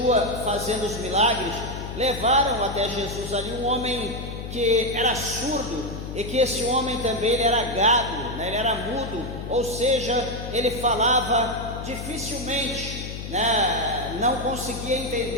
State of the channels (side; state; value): left; noise; hum, 8 dB below the sound